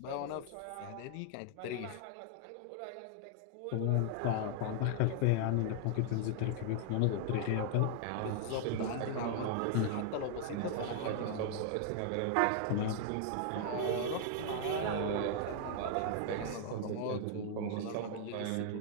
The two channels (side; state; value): both; different; correlation 0.00